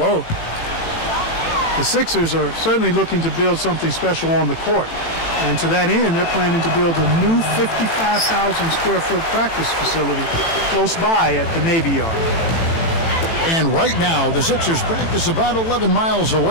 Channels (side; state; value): right; late; 18 ms